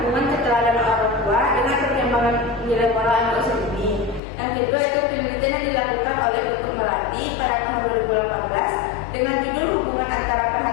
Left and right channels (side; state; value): right; drops out; at 4.2 s